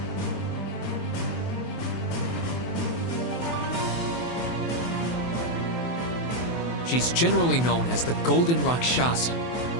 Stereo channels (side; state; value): right; late; 24 ms